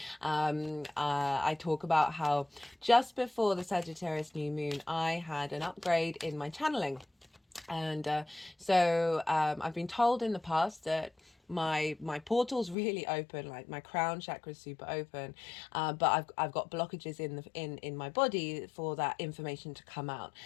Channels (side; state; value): right; drops out; at 12.8 s